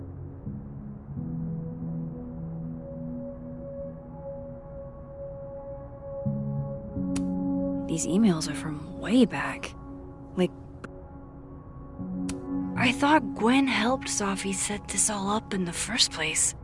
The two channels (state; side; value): identical; both; correlation 1.00